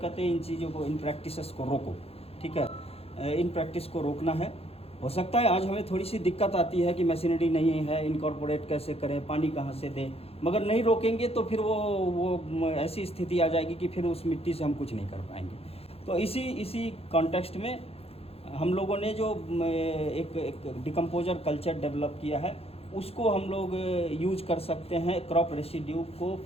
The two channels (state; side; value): late; right; 0.29 ms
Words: हैं इन चीज़ों को, इन प्रैक्टिसेस को रोको। ठीक है, इन प्रैक्टिस को रोकना है। हो सकता है आज हमें थोड़ी सी दिक्कत आती है कि मशीनरी नहीं है, इनकॉर्पोरेट कैसे करें, पानी कहाँ से दें, मगर नहीं रोकेंगे तो फिर वो ऐसी स्थिति आ जाएगी कि फिर उस मिट्टी से हम कुछ नहीं कर पाएंगे। तो इसी कॉन्टेक्स्ट में हम लोगों ने जो एक डिकम्पोजर कल्चर डेवलप किया है, उसको हम लोग यूज कर सकते हैं क्रॉप रेसिड्यू को